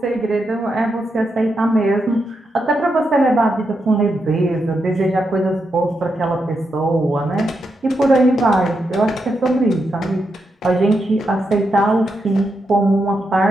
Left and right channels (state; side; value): normal; both; correlation 0.84